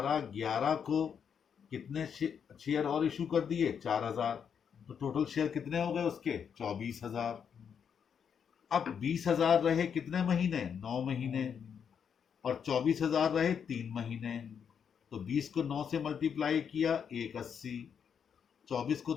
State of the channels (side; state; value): right; quieter; 7.4 dB